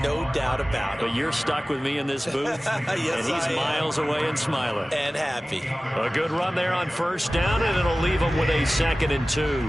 No doubt about it. But you're stuck with me in this booth, yes, and he's miles away and smiling. And happy. A good run there on 1st down, and it'll leave him with a 2nd and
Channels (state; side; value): normal; both; correlation 0.97